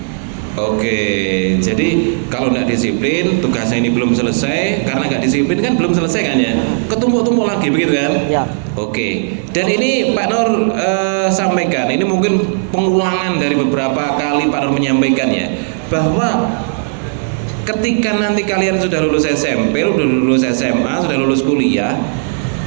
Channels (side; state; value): left; silent; digital silence